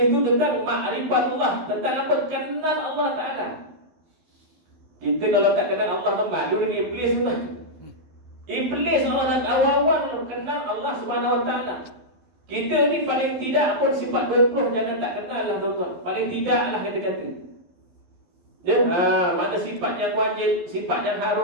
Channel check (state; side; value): late; left; 12 ms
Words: itu tentang ma'rifatullah, tentang apa? Kenal Allah Ta'ala. Kita kalau tak kenal Allah, malu dengan iblis tu. Iblis orang awal-awal kenal Allah Subhanahu Wa Ta'ala. Kita ni paling tidak pun sifat 20 jangan tak kenal lah tuan-tuan. Paling tidak lah kata-kata. Ya, mana sifat yang wajib, sifat yang